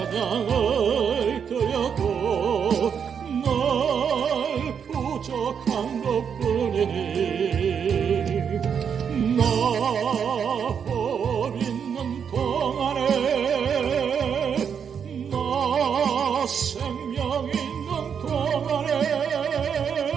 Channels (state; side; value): quieter; left; 7.3 dB